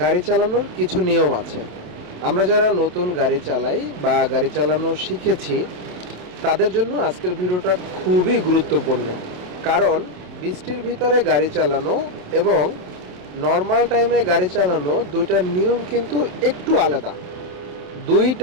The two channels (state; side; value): late; left; 28 ms